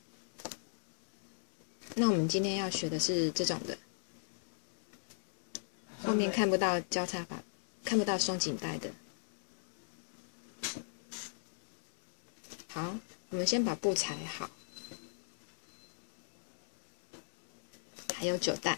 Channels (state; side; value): silent; right; digital silence